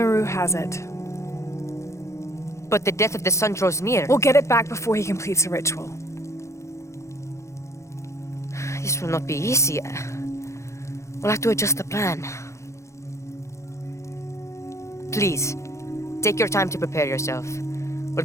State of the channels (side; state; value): right; late; 0.14 ms